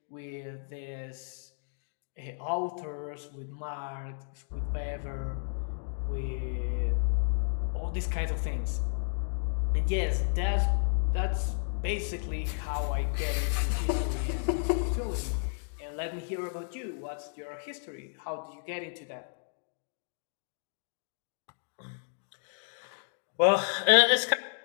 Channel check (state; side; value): silent; right; digital silence